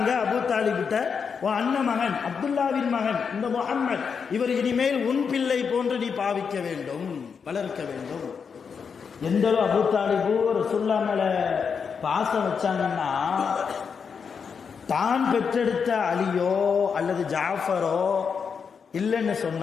அபூ தாலிபிட்ட, உன் அண்ணன் மகன் அப்துல்லாவின் மகன் இந்த முஹம்மத், இவர் இனிமேல் உன் பிள்ளை போன்று நீ பாவிக்க வேண்டும், வளர்க்க வேண்டும். எந்த அளவு அபூ தாலிபு ரசூலுல்லாஹ் மேல பாசம் வச்சாங்கன்னா, தான் பெற்றெடுத்த அலியோ அல்லது ஜாஃபரோ இல்லைன்னு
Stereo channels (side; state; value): right; quieter; 6.2 dB